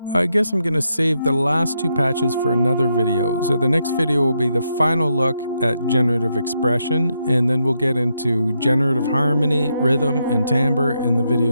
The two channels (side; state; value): both; inverted; correlation -0.81